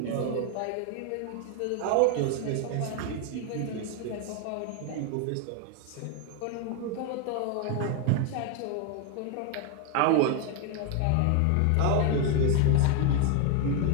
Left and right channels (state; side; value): different; both; correlation 0.00